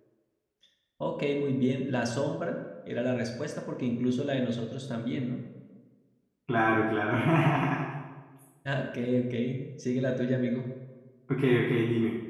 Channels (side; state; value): both; identical; correlation 1.00